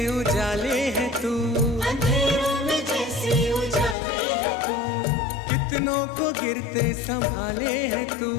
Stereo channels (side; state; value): right; drops out; at 4.0 s